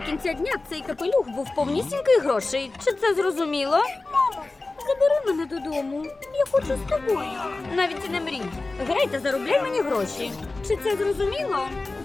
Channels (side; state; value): right; quieter; 3.3 dB